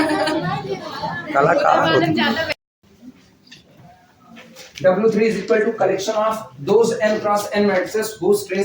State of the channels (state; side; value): identical; both; correlation 1.00